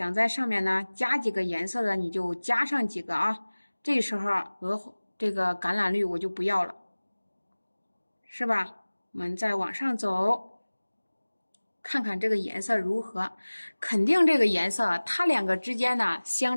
在上面呢加几个颜色的，你就加上几个啊。这时候这个橄榄绿我就不要了，是吧？我们再往上走。看看这个颜色如何，肯定这个颜色它两个之间呢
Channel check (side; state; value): both; inverted; correlation -1.00